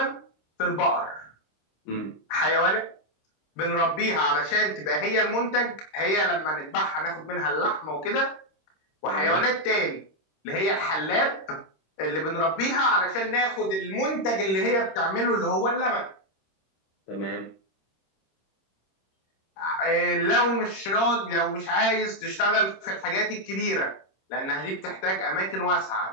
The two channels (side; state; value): right; late; 26 ms